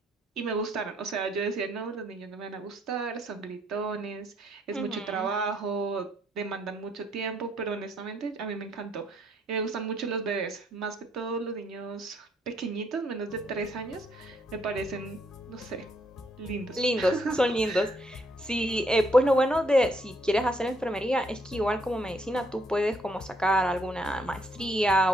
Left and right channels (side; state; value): both; normal; correlation 0.71